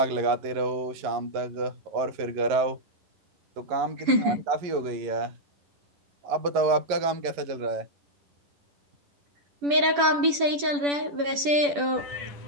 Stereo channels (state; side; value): late; left; 10 ms